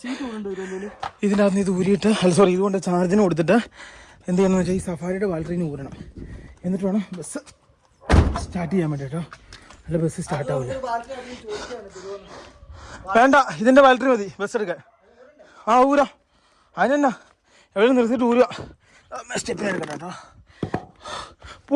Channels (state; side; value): identical; both; correlation 1.00